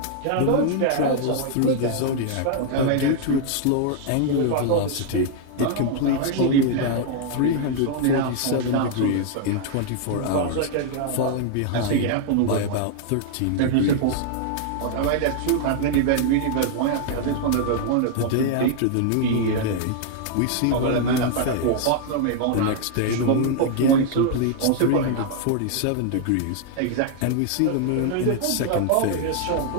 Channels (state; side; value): different; both; correlation 0.00